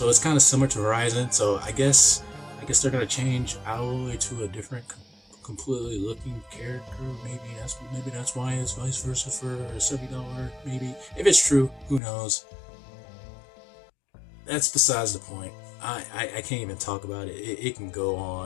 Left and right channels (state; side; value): drops out; right; at 12.0 s